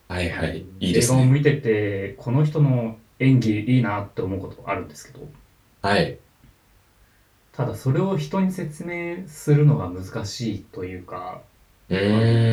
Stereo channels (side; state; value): both; identical; correlation 1.00